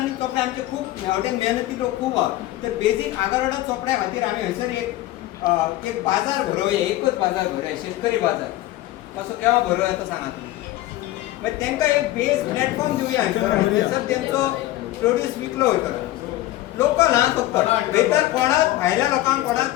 चोपडे आमचे खूब हेवटेन मेहनती लोक खूब आहा तर बेजीक आगारोडा चोपड्या खातीर आमी हयसर एक बाजार भरोवया एकच बाजार भरोवया शेतकरी बाजार तसो केव्हा भरोवया तो सांगा तुमी मागीर तांकां एक बेज प्लॅटफॉर्म दिवया हयसर तेंचो प्रोड्यूस विकलो वयतलो लोकल हा फक्त भितर कोणाक भायल्या लोकांक कोणाक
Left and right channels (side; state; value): right; quieter; 16.1 dB